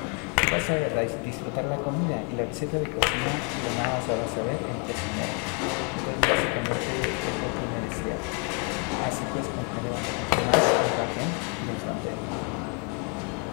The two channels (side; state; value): right; quieter; 37.0 dB